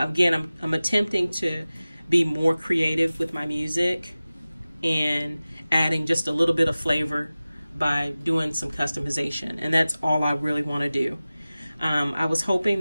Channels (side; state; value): both; inverted; correlation -0.97